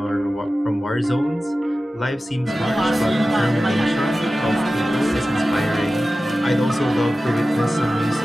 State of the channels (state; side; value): normal; both; correlation 0.95